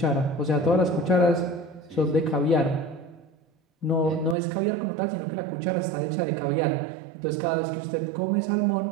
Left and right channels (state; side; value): drops out; left; at 4.4 s